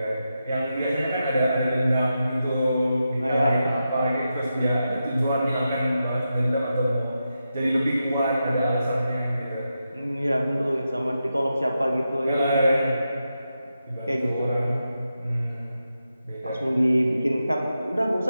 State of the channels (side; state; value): both; inverted; correlation -0.88